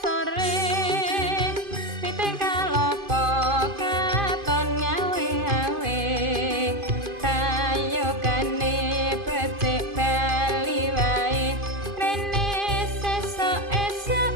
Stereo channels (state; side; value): late; left; 2.5 ms